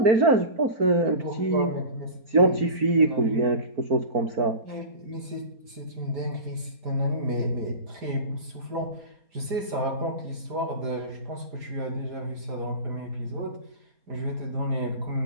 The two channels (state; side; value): late; left; 5.0 ms